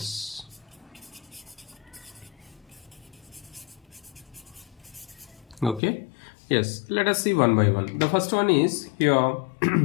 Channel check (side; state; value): right; drops out; at 5.8 s